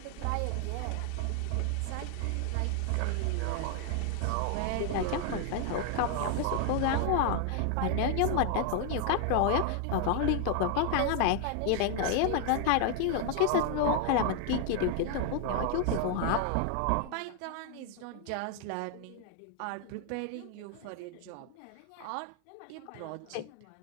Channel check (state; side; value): different; both; correlation 0.00